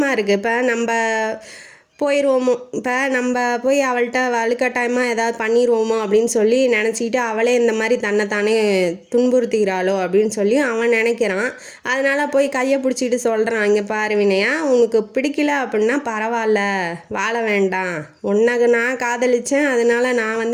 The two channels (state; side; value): identical; both; correlation 1.00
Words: இருக்குது. இப்போ நம்ம போயிடுவோமோ, இப்போ நம்ம போய் அவள்கிட்ட வலுக்கட்டாயமாக ஏதாவது பண்ணிடுவோமோ அப்படின்னு சொல்லி நினச்சிக்கிட்டு அவளே இந்த மாதிரி தன்னைத்தானே துன்புறுத்திக்கிறாளோ அப்படின்னு சொல்லி அவன் நினைக்கிறான். அதனால் போய் கையை பிடிச்சிக்கிட்டு சொல்கிறான், இங்கே பாரு வினயா, உனக்கு பிடிக்கல அப்படின்னா பரவாயில்ல, வாழ வேண்டாம், உன்னை நான் காதலித்தேன், அதனால் நான்